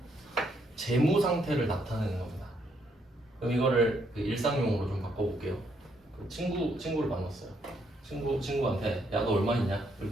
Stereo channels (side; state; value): both; normal; correlation 0.73